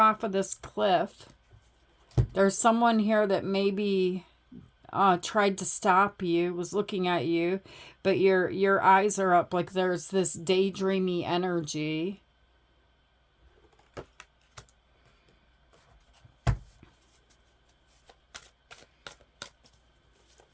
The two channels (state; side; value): identical; both; correlation 1.00